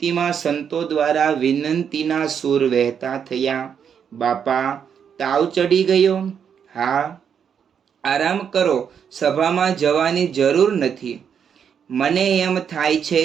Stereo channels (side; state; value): left; quieter; 7.6 dB